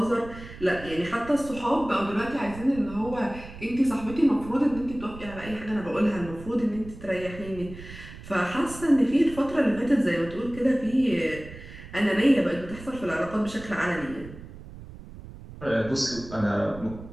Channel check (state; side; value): noise; right; rumble, 15 dB below the sound